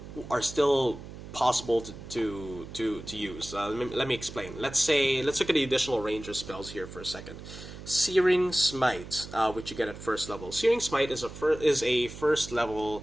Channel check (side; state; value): right; noise; hum, 13 dB below the sound